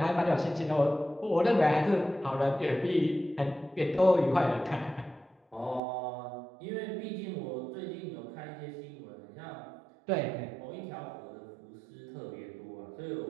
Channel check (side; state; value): left; drops out; at 5.8 s